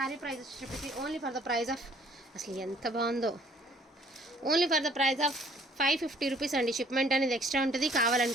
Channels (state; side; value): normal; both; correlation 0.58